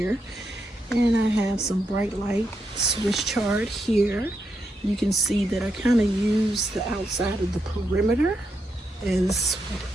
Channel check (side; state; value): both; normal; correlation 0.82